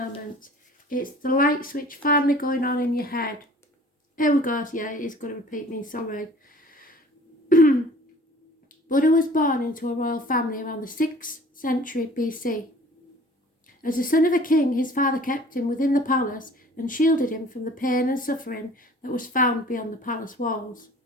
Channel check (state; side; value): normal; both; correlation 0.49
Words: It's the light switch finally going on in your head. Here we go. Yeah, it is going to repeat me, sorry. Buddha was born into a royal family around the 6th century BC. As the son of a king, his father kept him within the palace and shielded him from the pain and suffering that was found beyond the palace walls.